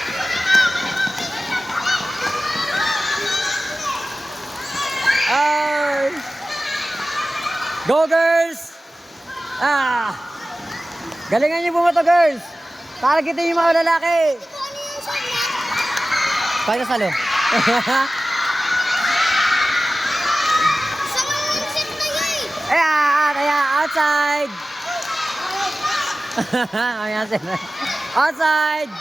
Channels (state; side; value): normal; both; correlation 0.95